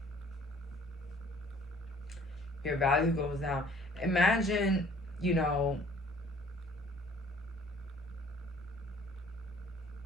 Your value goes down. Imagine, you know,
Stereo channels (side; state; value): both; normal; correlation 0.56